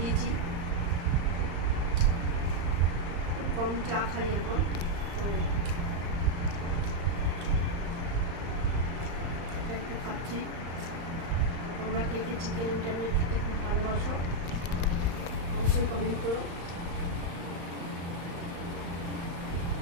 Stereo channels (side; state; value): left; late; 35 ms